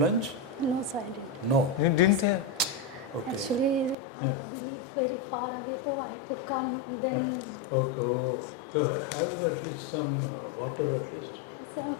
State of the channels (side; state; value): right; drops out; at 4.0 s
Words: No, sir, I didn't. No. You didn't say? Okay. Actually, we live very far away, so I had to come. Then, Okay. Oh. So have at least some water at least. so I'm